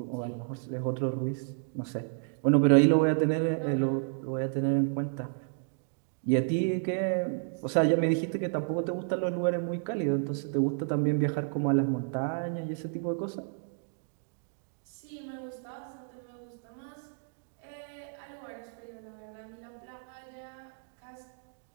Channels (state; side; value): silent; left; digital silence